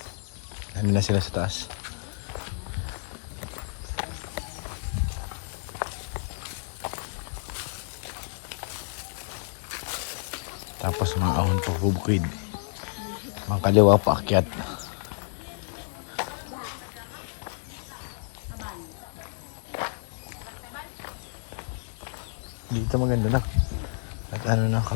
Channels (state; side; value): silent; right; 55 dB below the other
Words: Ano na sila sa taas. Tapos mga ahon pa bubukid. Mga kaliwa pa akyat. Dito maganda na. At ano na,